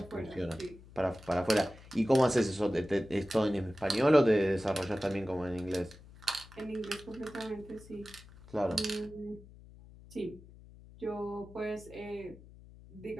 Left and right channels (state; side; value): noise; left; hum, 20 dB below the sound